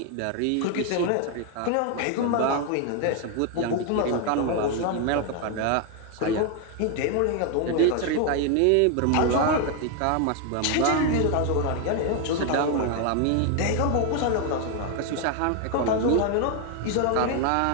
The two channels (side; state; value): both; different; correlation 0.01